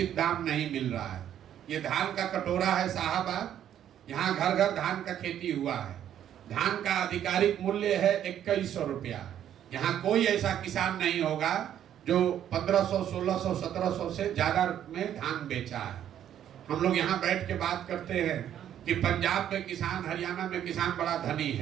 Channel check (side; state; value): left; quieter; 10.4 dB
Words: दाम नहीं मिल रहा है। ये धान का कटोरा है साहबाद, यहाँ घर घर धान का खेती हुआ है। धान का आधिकारिक मूल्य है 2100 रुपया। यहाँ कोई ऐसा किसान नहीं होगा जो 1500, 1600, 1700 से ज्यादा में धान बेचा है। हम लोग यहाँ बैठ के बात करते हैं कि पंजाब में किसान, हरियाणा में किसान बड़ा धनी